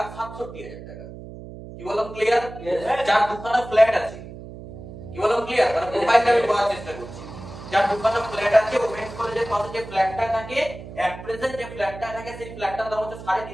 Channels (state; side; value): noise; right; hum, 13 dB below the sound